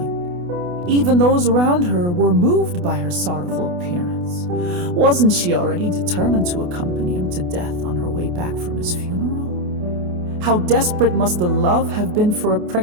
Even those around her were moved by her sorrowful appearance. Wasn't she already determined to accompany him to death on her way back from his funeral? How desperate must the love have been for a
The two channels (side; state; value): left; late; 28 ms